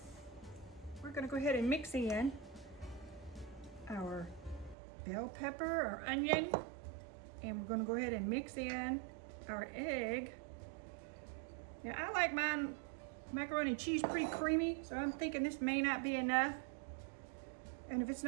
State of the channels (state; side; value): drops out; left; at 4.8 s